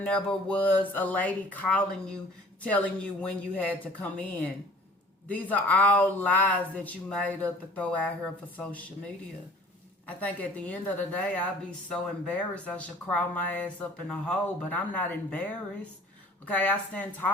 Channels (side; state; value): both; normal; correlation 0.50